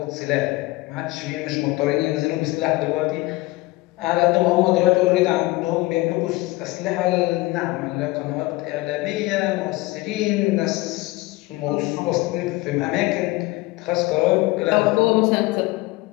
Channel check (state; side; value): quieter; right; 20.9 dB